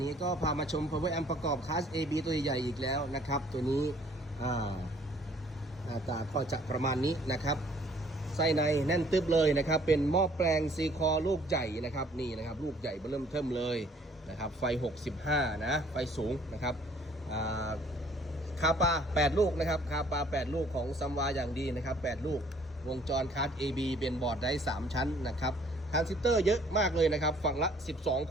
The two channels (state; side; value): normal; both; correlation 0.59